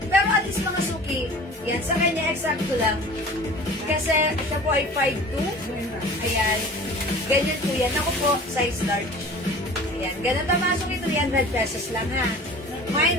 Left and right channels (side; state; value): both; normal; correlation 0.42